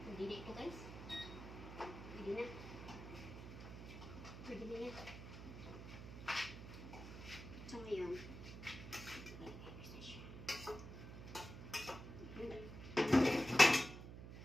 Hindi na ito guys. Hindi na. Pwede na yan. So ngayon,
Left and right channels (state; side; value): noise; right; hum, 11 dB below the sound